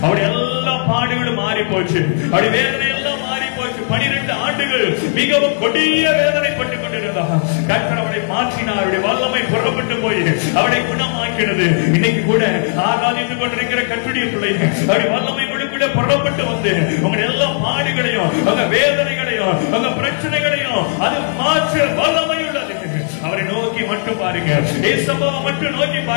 அவருடைய எல்லா பாடுகளும் மாறி போச்சு. அவருடைய வேதனை எல்லாம் மாறி போச்சு. 12 ஆண்டுகள் மிகவும் கொடிய வேதனைப்பட்டுக் கொண்டிருந்தார். கர்த்தர் அவரை மாற்றினார். அவருடைய வல்லமை புறப்பட்டு போய் அவரை குணமாக்கினது. இன்னைக்கு கூட ஆராதித்துக் கொண்டிருக்கிற கர்த்தருடைய பிள்ளைகள் அவருடைய வல்லமை கூட புறப்பட்டு வந்து உங்களுடைய எல்லா பாடுகளையும் அந்த வேதனைகளையும் அந்த பிரச்சனைகளையும் அது மாற்ற வல்லமை உள்ளது. அவரை நோக்கி மட்டும் பாருங்க. ஏசப்பாவை மட்டும் நோக்கி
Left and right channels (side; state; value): right; silent; digital silence